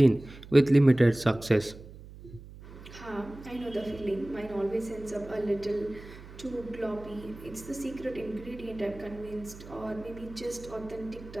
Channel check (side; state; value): right; noise; hum, 17 dB below the sound